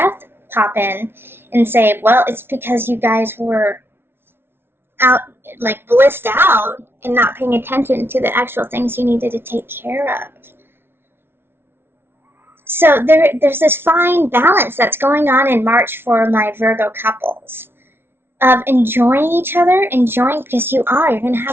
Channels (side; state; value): left; late; 0.11 ms